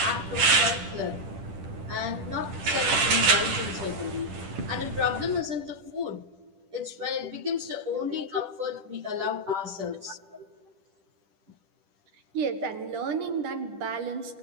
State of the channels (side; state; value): left; late; 10 ms